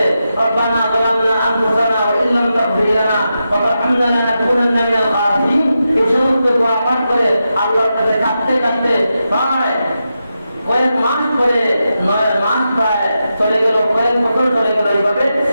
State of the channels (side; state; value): both; inverted; correlation -0.88